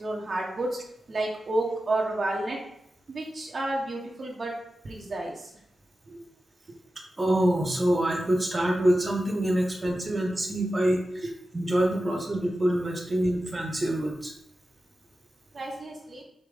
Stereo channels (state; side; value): normal; both; correlation 0.93